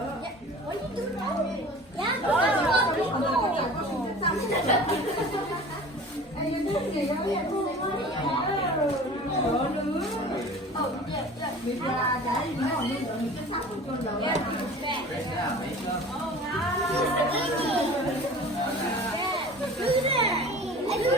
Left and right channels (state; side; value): normal; both; correlation 0.41